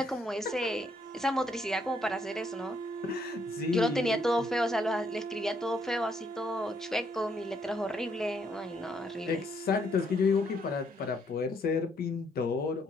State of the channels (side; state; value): both; normal; correlation 0.71